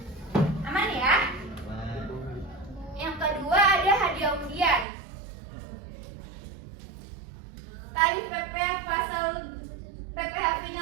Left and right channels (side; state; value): left; drops out; at 4.9 s